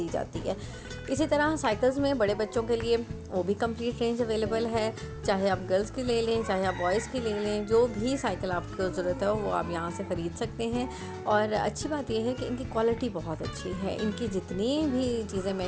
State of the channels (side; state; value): both; identical; correlation 1.00